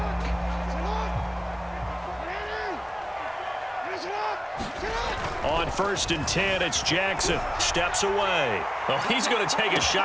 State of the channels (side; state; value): both; identical; correlation 1.00